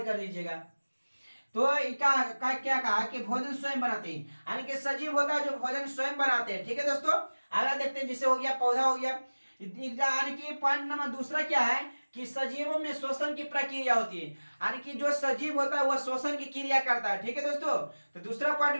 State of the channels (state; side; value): inverted; both; correlation -1.00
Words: कर लीजिएगा। तो क्या कहा कि भोजन स्वयं बनाते हैं, यानी कि सजीव होता है जो भोजन स्वयं बनाते हैं। ठीक है दोस्तों, आगे देखते हैं, जिसे हो गया पौधा हो गया। यानी कि पॉइंट नंबर दूसरा क्या है कि सजीवों में श्वसन की प्रक्रिया होती है, यानी कि जो सजीव होता है वह श्वसन की क्रिया करता है। ठीक है दोस्तों, तो दूसरा पॉइंट